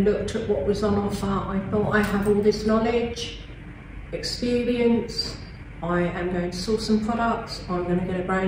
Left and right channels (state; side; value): identical; both; correlation 1.00